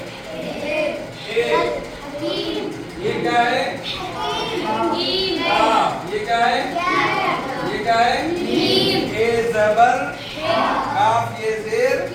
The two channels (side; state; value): both; identical; correlation 1.00